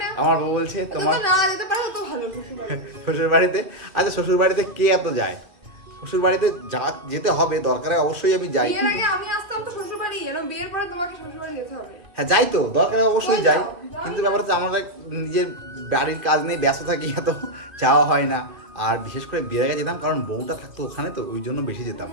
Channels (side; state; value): left; late; 2.7 ms